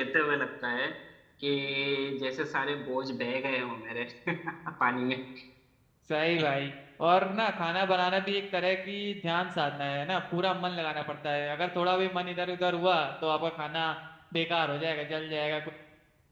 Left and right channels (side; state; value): both; identical; correlation 1.00